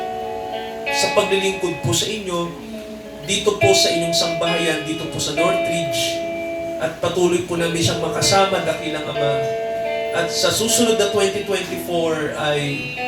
sa paglilingkod po sa inyo dito po sa inyong sangbahayan, dito po sa Northridge, at patuloy po namin siyang makasama dakilang Ama. At sa susunod na 2024 ay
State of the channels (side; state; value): both; identical; correlation 1.00